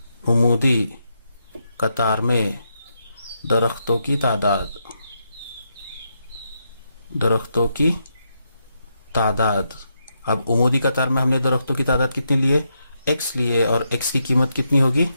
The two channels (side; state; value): both; inverted; correlation -0.81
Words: दरख्तों की तादाद, अब उमूदी कतार में हमने दरख्तों की तादाद कितनी लिए, x लिए, और x की कीमत कितनी होगी,